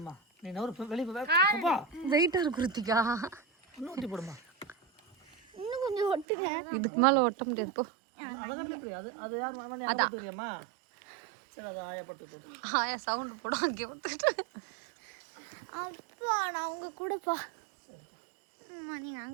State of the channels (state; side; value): drops out; left; at 6.2 s